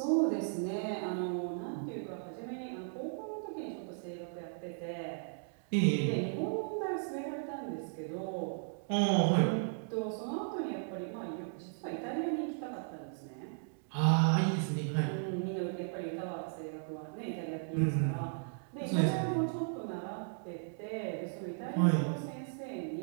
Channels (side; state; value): left; silent; digital silence